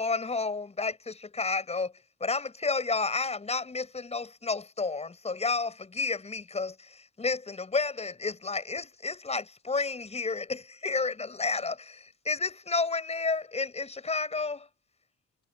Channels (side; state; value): right; quieter; 3.6 dB